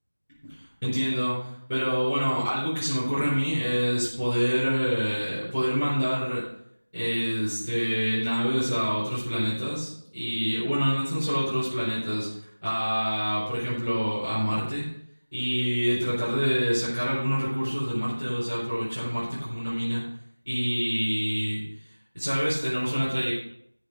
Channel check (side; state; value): both; inverted; correlation -1.00